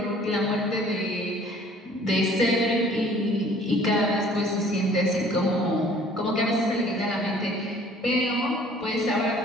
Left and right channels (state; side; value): normal; both; correlation 0.54